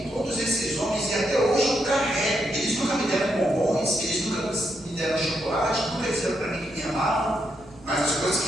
todos esses homens e até hoje eu carrego. Eles nunca me deram bombons, eles nunca me deram chocolate, nunca disseram para mim que me amavam, mas as coisas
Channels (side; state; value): right; noise; hum, 24 dB below the sound